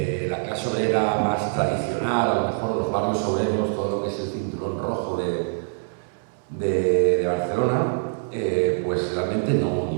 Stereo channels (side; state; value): left; silent; 62 dB below the other